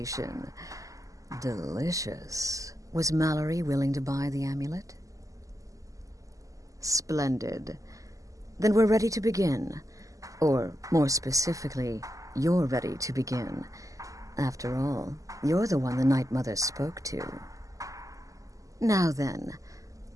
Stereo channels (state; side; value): late; left; 0.16 ms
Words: Delicious. Was Mallory willing to buy the amulet? Splendid. Then we're ready to begin. Or, more specifically, you're ready to begin. After all, you're the one the Night Mother spoke to. Now then,